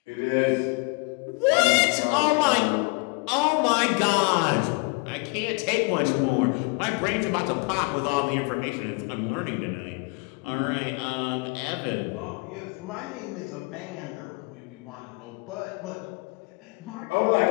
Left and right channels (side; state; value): right; quieter; 30.7 dB